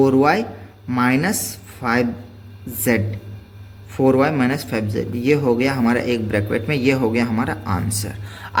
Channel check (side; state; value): both; identical; correlation 1.00